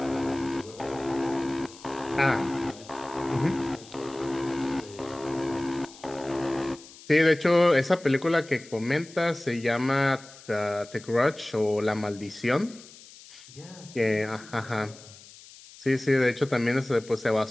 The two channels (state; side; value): noise; left; hiss, 20 dB below the sound